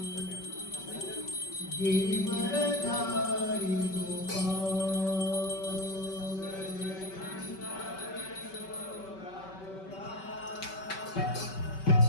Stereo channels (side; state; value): right; late; 5.3 ms